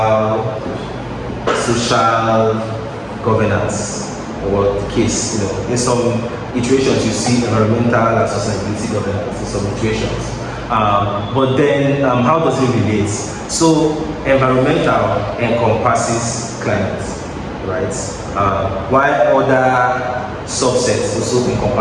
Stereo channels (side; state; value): both; identical; correlation 1.00